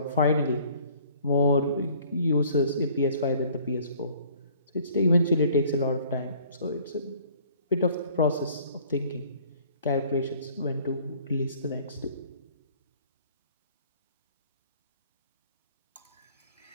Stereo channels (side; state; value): both; inverted; correlation -0.55